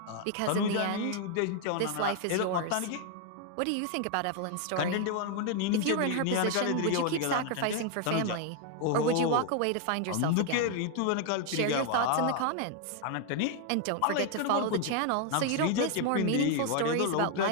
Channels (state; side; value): different; both; correlation 0.01